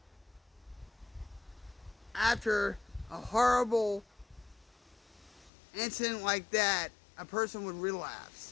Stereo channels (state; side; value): drops out; right; at 5.5 s